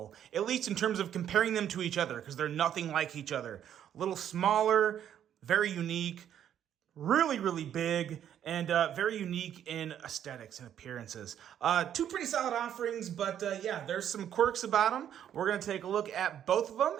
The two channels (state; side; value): quieter; left; 10.0 dB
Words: at least in terms of comparing them to each other, because they're nothing like each other. A little smaller, very unique, really big, and very unique in aesthetics and appearances. Two pretty solid offerings, but yeah, there's some quirks about them. We're going to take a look at both of them,